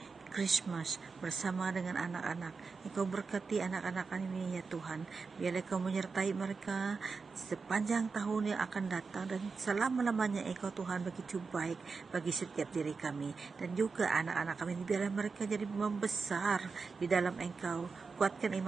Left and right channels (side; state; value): left; quieter; 4.7 dB